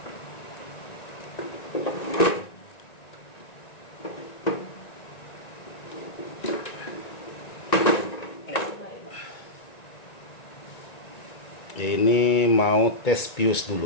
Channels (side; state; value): right; late; 1.9 ms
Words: Ini mau tes pius